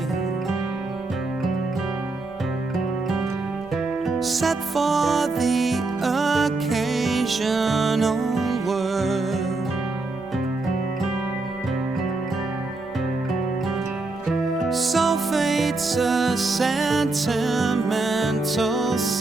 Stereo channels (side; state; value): left; quieter; 3.3 dB